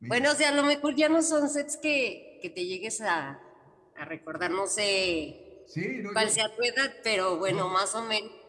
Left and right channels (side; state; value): both; identical; correlation 1.00